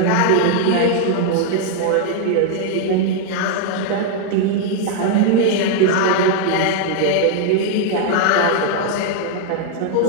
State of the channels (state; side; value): different; both; correlation 0.00